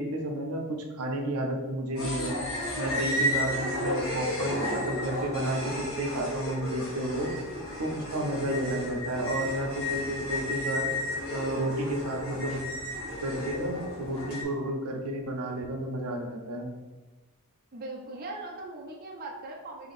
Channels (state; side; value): normal; both; correlation 0.14